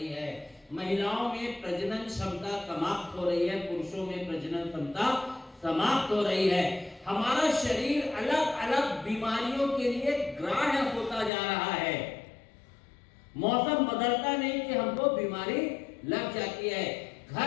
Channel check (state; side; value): drops out; right; at 11.3 s